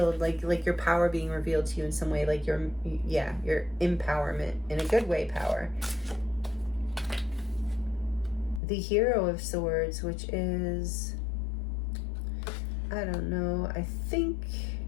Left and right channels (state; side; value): drops out; right; at 8.6 s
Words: Like your power being revealed to you in some way, like your empowerment, in a good way, power. The Hero of Swords, which is, I don't know, I think